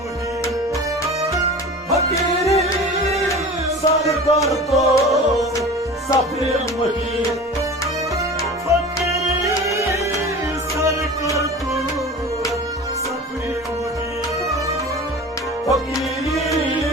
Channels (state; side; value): normal; both; correlation 0.36